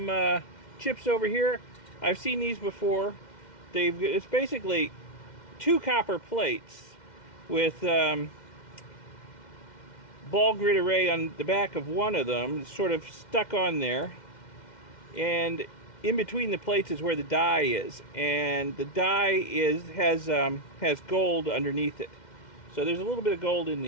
chips over here. I've seen these before. It's basically 2 copper plates with ball grid array on the back of one of them. It's sort of stuck on there, and in between the plates is where the die is, and the die has gold underneath it. So there's a little bit of gold in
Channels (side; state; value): right; late; 2.1 ms